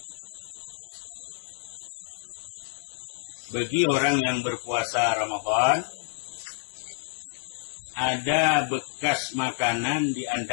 Bagi orang yang berpuasa Ramadan, ada bekas makanan di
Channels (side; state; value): right; silent; digital silence